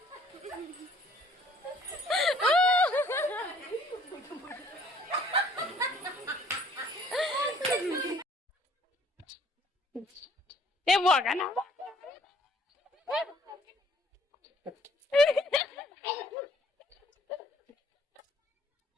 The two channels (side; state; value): both; normal; correlation 0.59